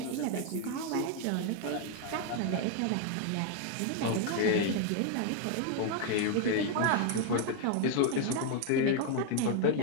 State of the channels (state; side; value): different; both; correlation 0.01